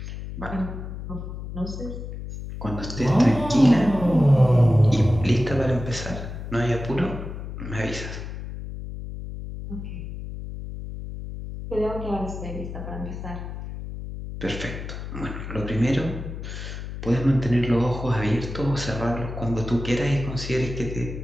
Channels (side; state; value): left; noise; hum, 8 dB below the sound